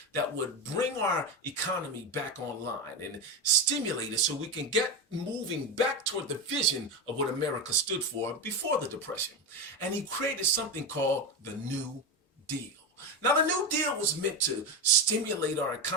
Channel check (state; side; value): normal; both; correlation 0.15